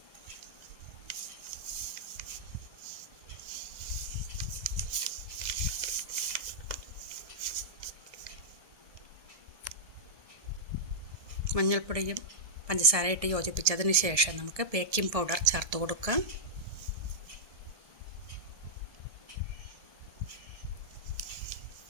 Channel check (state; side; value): late; left; 1.7 ms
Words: മഞ്ഞൾപ്പൊടിയും പഞ്ചസാരയിട്ട് യോജിപ്പിച്ചതിന് ശേഷം നമുക്ക് ബേക്കിംഗ് പൗഡർ ചേർത്ത് കൊടുക്കാം.